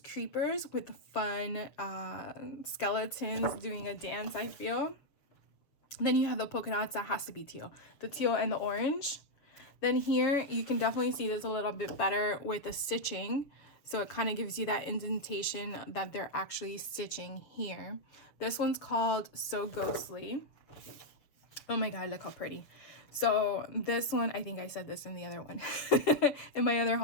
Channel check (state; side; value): late; right; 7.1 ms